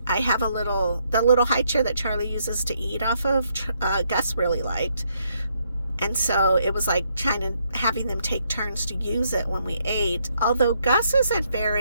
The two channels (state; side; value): inverted; both; correlation -0.74